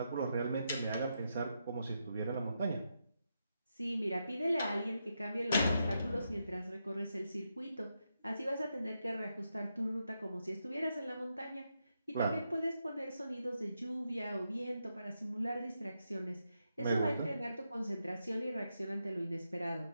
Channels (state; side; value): inverted; both; correlation -0.84